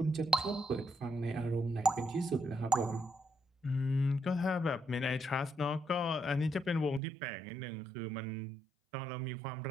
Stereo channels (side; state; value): left; drops out; at 7.0 s